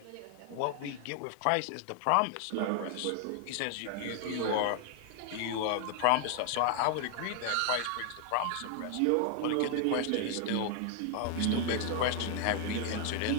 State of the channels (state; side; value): different; both; correlation 0.00